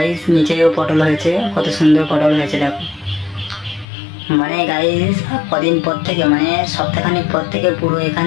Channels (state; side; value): drops out; right; at 3.9 s